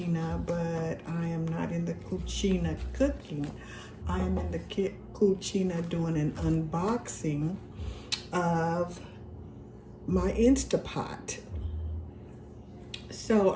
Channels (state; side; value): identical; both; correlation 1.00